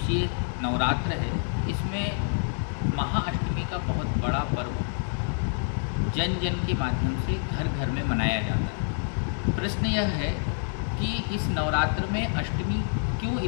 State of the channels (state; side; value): silent; right; digital silence